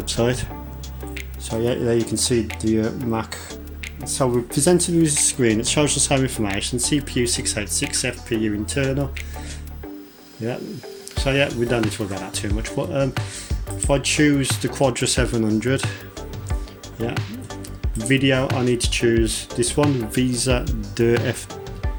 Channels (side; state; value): both; identical; correlation 1.00